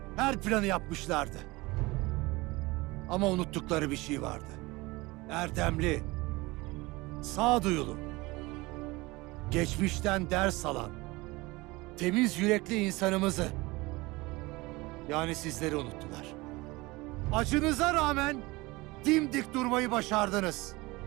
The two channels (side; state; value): left; quieter; 22.3 dB